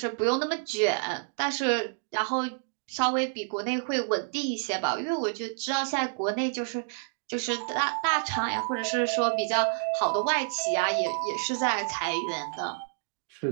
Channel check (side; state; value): left; silent; digital silence